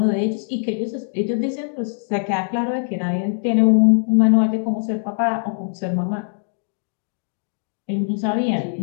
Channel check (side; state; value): right; silent; digital silence